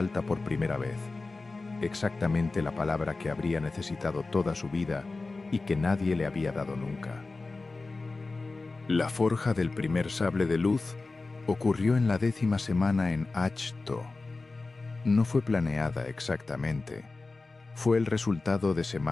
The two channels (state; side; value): quieter; right; 3.6 dB